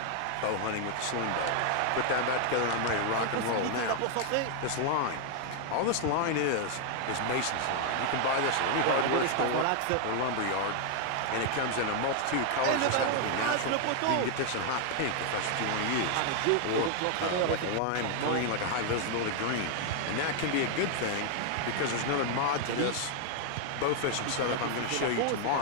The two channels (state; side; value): different; both; correlation 0.00